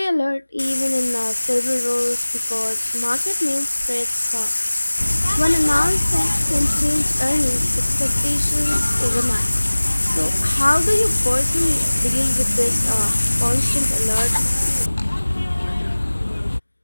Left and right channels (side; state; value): both; inverted; correlation -1.00